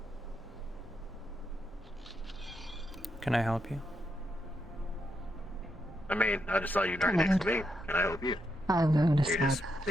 Can I help you? I mean, I just saw you right next to me. Can I help you? I'm going to You're just start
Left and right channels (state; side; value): normal; both; correlation 0.81